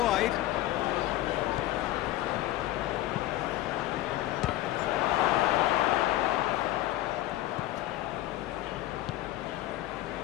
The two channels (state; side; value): quieter; right; 15.5 dB